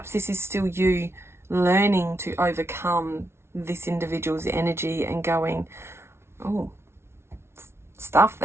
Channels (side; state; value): left; late; 0.12 ms